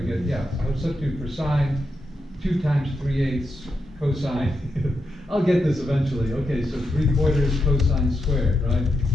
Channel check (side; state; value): both; normal; correlation 0.85